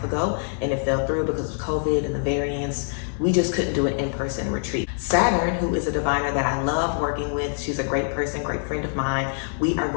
ago and it fell through because of COVID and the variants. We just couldn't do an in-person retreat. Saturn, who is a diviner that I love working with, she's a great person, great friend of mine. We are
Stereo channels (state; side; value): silent; right; 60 dB below the other